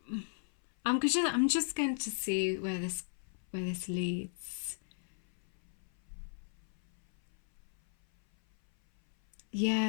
I'm just going to see where this leads.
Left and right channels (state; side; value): silent; right; 54 dB below the other